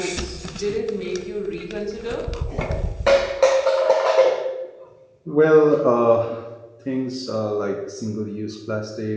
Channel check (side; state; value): both; identical; correlation 1.00